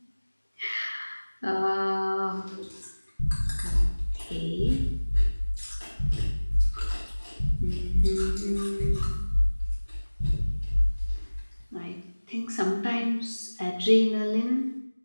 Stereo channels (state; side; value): inverted; both; correlation -1.00